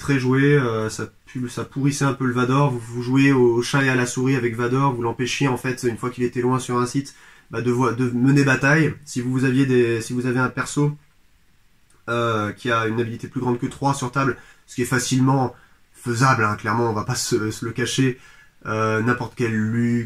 jouée, ça pourrissait un peu le Vador, vous jouez au chat et à la souris avec Vador, vous l'empêchiez en fait, une fois qu'il était loin sur un site, bah, de mener bataille. Si vous avez un perso qui a une habilité plus grande que 3 sur table, ce qui est facilement faisable, hein, clairement, on va pas se le cacher, n'importe quel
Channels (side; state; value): both; identical; correlation 1.00